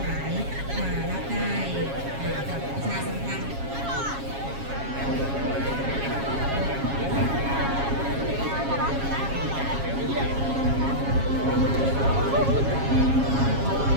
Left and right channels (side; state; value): left; late; 7.3 ms